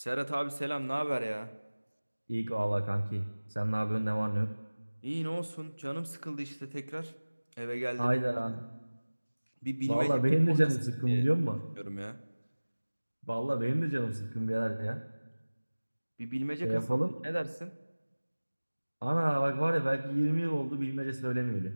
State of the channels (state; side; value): inverted; both; correlation -1.00